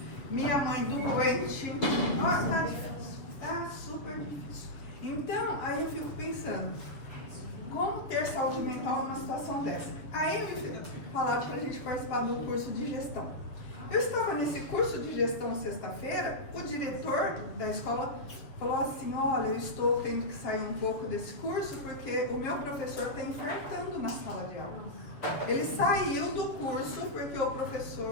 Minha mãe doente, nossa, tá difícil, tá super difícil. Então, aí eu fico pensando, como ter saúde mental numa situação dessa? Aí me falaram para a gente participar do curso de gestão. Eu estava nesse curso de gestão sexta-feira, o diretor da escola falou assim, olha, eu estou tendo que sair um pouco desse curso porque o meu professor está infartando na sala de aula. Ele saiu do curso porque o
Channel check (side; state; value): right; late; 7.3 ms